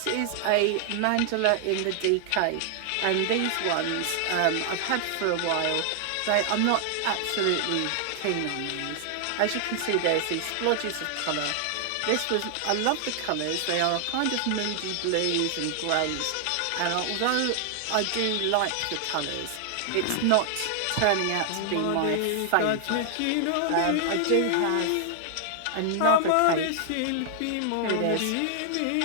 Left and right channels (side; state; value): both; different; correlation 0.00